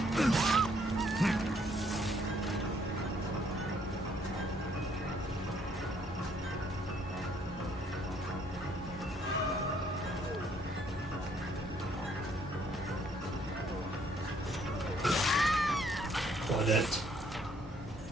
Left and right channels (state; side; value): normal; both; correlation 0.66